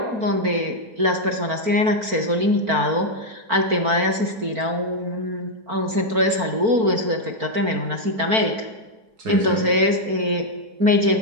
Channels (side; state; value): left; late; 4.4 ms